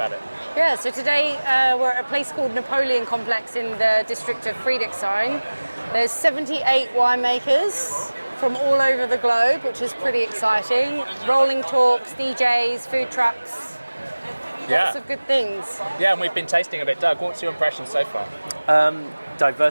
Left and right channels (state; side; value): inverted; both; correlation -1.00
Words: it. Yeah, so today we're at a place called Napoleon Complex in the district of Friedrichshain. There's 78 winemakers from all over the globe, which is pretty exciting. Rolling talks, DJs, food trucks, lots of good things. Yeah, and we've been tasting a bit. Doug, what's your impression so far?